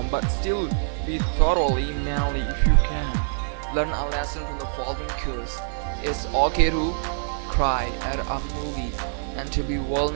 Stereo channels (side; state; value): left; silent; 59 dB below the other